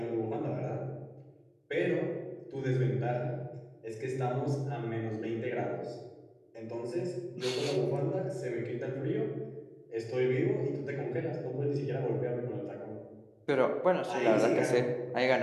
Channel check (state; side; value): identical; both; correlation 1.00